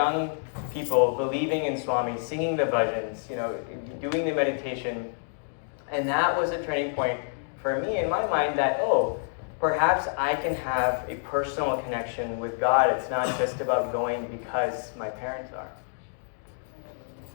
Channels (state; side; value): silent; right; digital silence